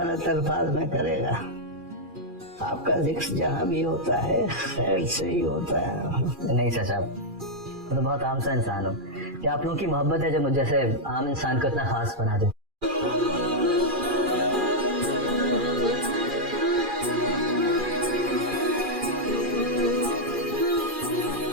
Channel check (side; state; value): left; late; 2.4 ms